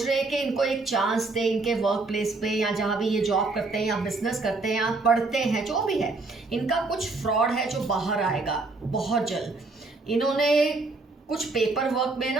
रहे हैं कि इनको एक चांस दे इनके वर्क प्लेस पे, या जहाँ भी ये जॉब करते हैं या बिजनेस करते हैं या पढ़ते हैं, जो भी है, इनका कुछ फ्रॉड है जो बाहर आएगा बहुत जल्द। इन्होंने कुछ पेपर वर्क में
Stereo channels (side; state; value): left; quieter; 3.5 dB